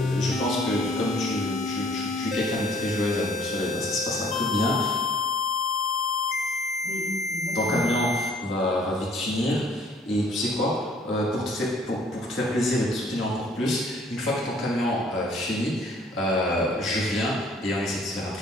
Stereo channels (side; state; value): both; normal; correlation 0.58